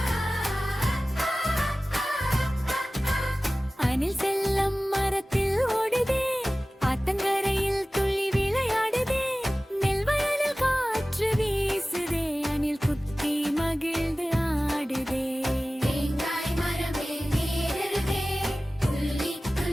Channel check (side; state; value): both; normal; correlation 0.97